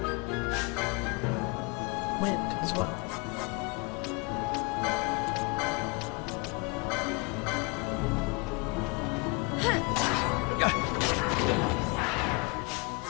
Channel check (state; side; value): quieter; right; 29.4 dB